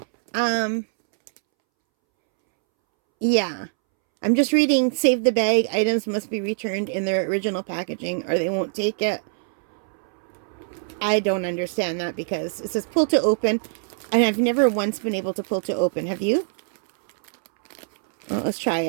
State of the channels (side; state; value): left; silent; 63 dB below the other